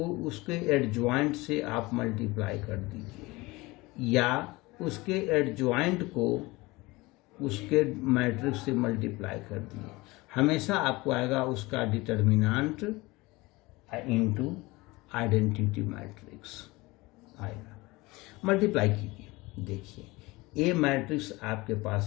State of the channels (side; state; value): right; quieter; 22.1 dB